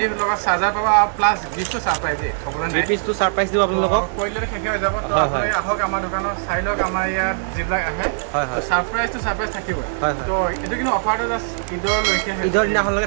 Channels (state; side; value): silent; left; digital silence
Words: লগত চাৰ্জাৰ পাবা প্লাস গিফটটো সারপ্রাইজ দে কবলে নাই পিছটো সারপ্রাইজ দিব আপোনালোকক কইলে শেষ হৈ যাব তো হয়, আপুনি হয়। আহক আমাৰ দোকানত চাই লওক আমাৰ ইয়াত যিবিলাক আহে হয়, হয়। সাৰপ্ৰাইজ থাকিব হয়, হয়। তো এটো কিন্তু অফাৰটো জাষ্ট ঈদৰ লৈকে ঈদৰ